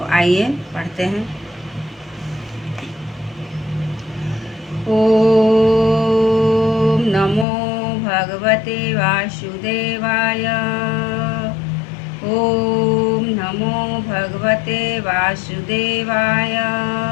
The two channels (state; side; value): drops out; right; at 7.5 s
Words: आइए पढ़ते हैं। ओम नमो भगवते वासुदेवाय। ओम नमो भगवते वासुदेवाय।